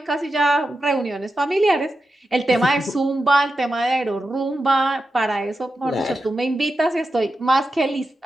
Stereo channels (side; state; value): both; normal; correlation 0.90